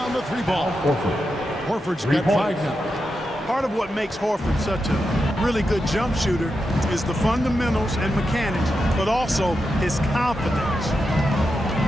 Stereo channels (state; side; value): normal; both; correlation 0.87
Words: the three ball. Horford's got 5 now. Part of what makes Horford such a really good jump shooter is the fundamentals and mechanics, but also his confidence.